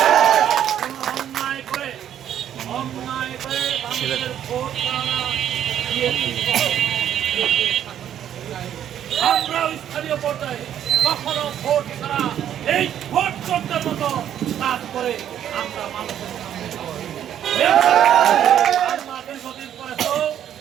অন্যায় করে মানুষের ভোট আমরাও স্থানীয় পর্যায়ে কখনো ভোট ছাড়া এই ভোট চোখের মতো কাজ করে আমরা মানুষের দীর্ঘদিন পরে তো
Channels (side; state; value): left; quieter; 10.3 dB